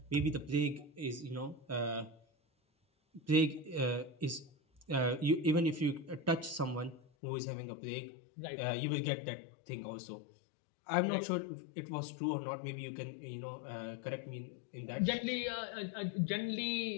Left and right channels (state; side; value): drops out; right; at 7.0 s